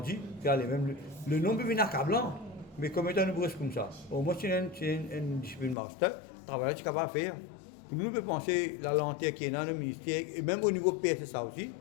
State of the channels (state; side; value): drops out; right; at 5.8 s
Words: le nombre est accablant. Mais comme étant une brosse comme ça, au moins c'est une discipline master, travail qu'il va faire. Nous pouvons penser la lenteur qui est dans le ministère, et même au niveau PSSA aussi,